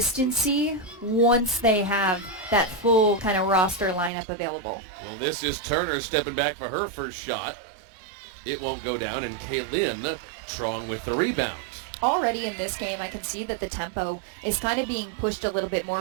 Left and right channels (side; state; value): left; drops out; at 4.1 s